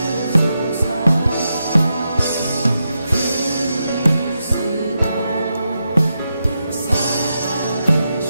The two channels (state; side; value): inverted; both; correlation -0.86